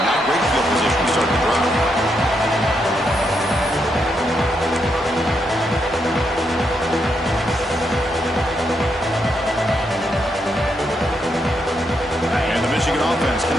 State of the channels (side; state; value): both; normal; correlation 0.80